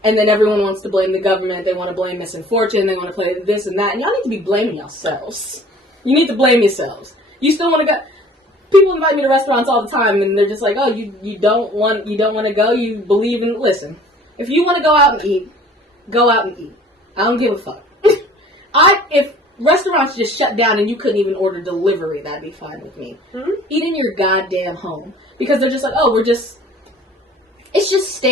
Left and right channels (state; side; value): normal; both; correlation 0.50